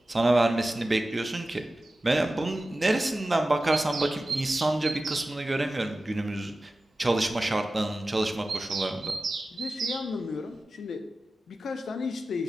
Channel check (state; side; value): normal; both; correlation 0.95